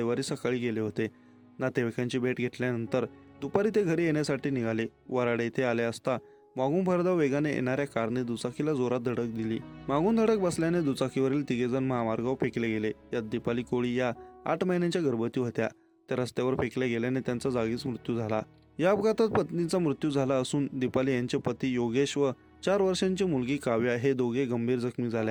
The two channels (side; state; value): both; identical; correlation 1.00